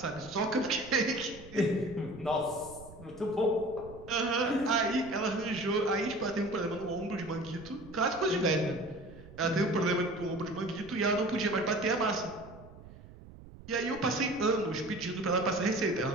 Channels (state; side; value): noise; right; rumble, 18 dB below the sound